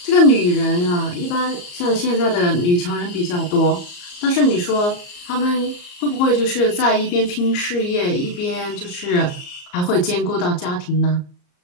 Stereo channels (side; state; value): right; late; 34 ms